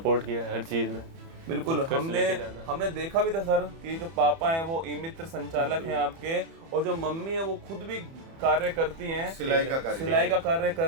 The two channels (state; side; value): late; left; 30 ms